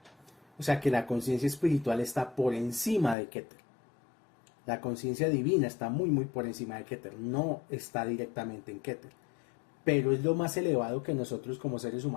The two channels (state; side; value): drops out; right; at 3.2 s